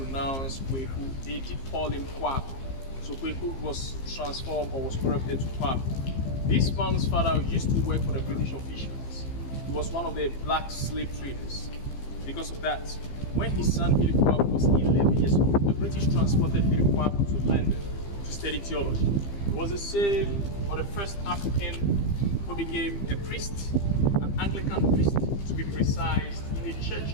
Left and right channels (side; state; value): right; late; 15 ms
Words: Kweku, they did call him Kwaku. So Kweku was transformed or was corrupted to Kwaku. This man's father used to work for the British officials. He was one of the black slave traders. Because of that, when his son Philip Kwaku was 11 years old, the British transported Philip Kwaku to London to study theology. He was the same or the first African who became a priest, an Anglican priest to be precise, in a church